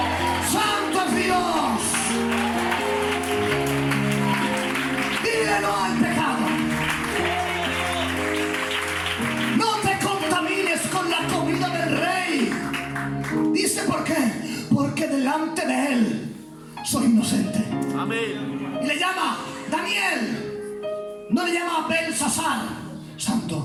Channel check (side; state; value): both; identical; correlation 1.00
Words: Santo es Dios. Dile no al pecado. No te contamines con la comida del rey. Dice: ¿por qué? Porque delante de él soy inocente. Amén. Y le llama Daniel. No le llama Belsasar.